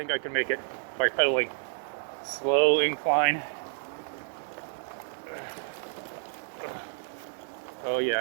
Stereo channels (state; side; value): silent; left; digital silence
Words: I can make it by pedaling. Slow incline. Oh